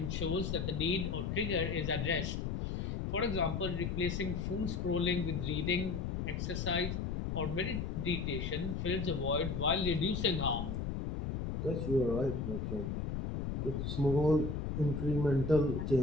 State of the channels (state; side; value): noise; left; rumble, 2 dB below the sound